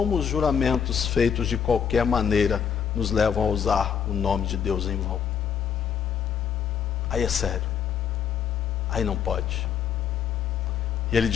os juramentos feitos de qualquer maneira nos levam a usar o nome de Deus em vão. Aí é sério. Aí não pode. E Ele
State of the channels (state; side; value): quieter; right; 7.7 dB